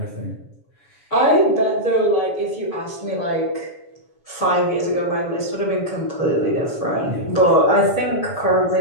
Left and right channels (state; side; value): late; right; 7.1 ms